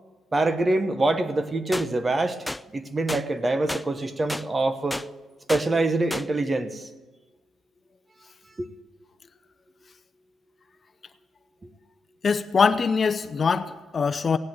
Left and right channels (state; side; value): normal; both; correlation 0.87